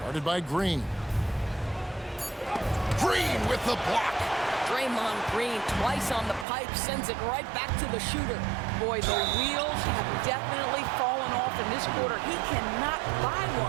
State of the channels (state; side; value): drops out; left; at 6.5 s